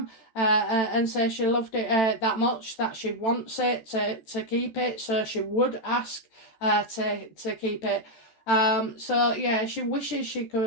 and say she loved it that much that she wants it to keep it, so she would ask to keep it. So yeah, she wishes she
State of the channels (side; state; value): right; late; 13 ms